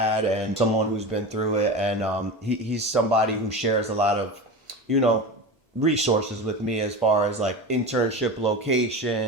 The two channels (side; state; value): both; normal; correlation 0.27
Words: and someone who's been through it. And he's somebody who shares a lot of, resources with me as far as internship